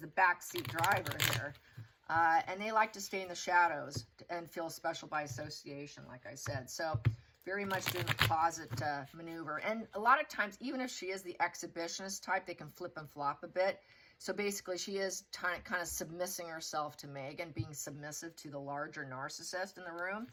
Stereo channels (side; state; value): both; identical; correlation 1.00